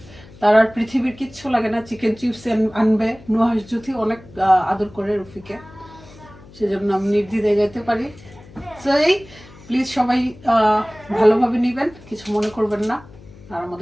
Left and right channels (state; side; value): noise; left; hum, 21 dB below the sound